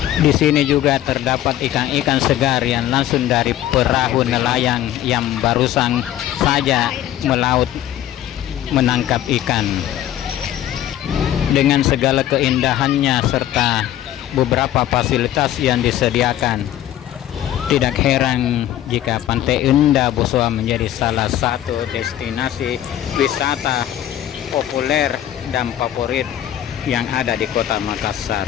Di sini juga terdapat ikan-ikan segar yang langsung dari perahu nelayan yang barusan saja melaut menangkap ikan. Dengan segala keindahannya serta beberapa fasilitas yang disediakan, tidak heran jika Pantai Indah Boswa menjadi salah satu destinasi wisata populer dan favorit yang ada di Kota Makassar.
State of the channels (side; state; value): right; quieter; 12.3 dB